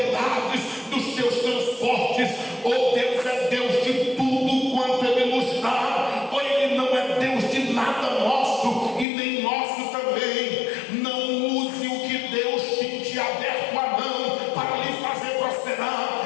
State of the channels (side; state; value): right; drops out; at 9.1 s